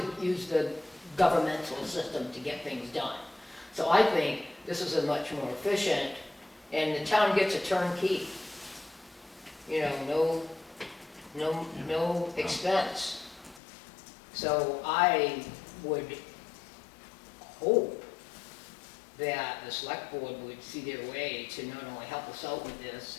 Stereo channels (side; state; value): right; drops out; at 13.6 s